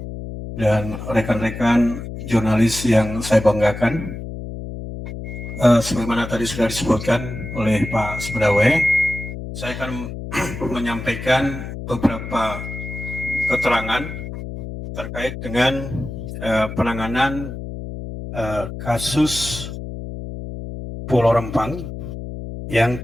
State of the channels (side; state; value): left; noise; hum, 8 dB below the sound